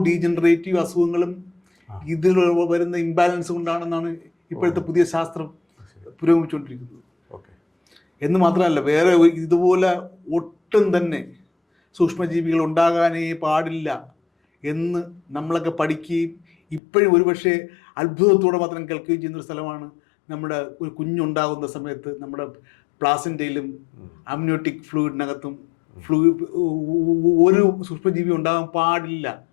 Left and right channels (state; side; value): drops out; right; at 16.8 s